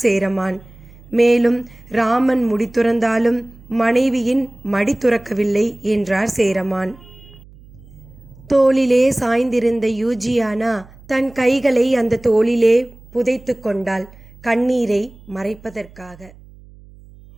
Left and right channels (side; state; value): right; noise; hum, 23 dB below the sound